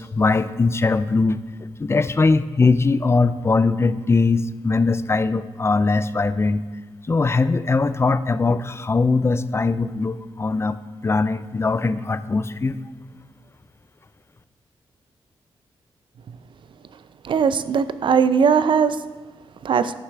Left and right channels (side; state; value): both; normal; correlation 0.79